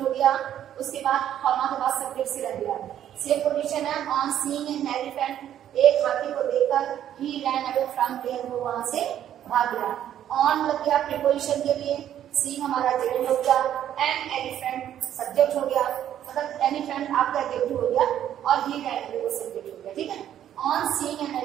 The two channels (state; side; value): quieter; left; 10.8 dB